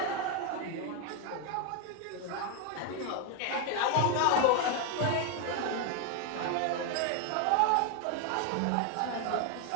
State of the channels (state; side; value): different; both; correlation 0.01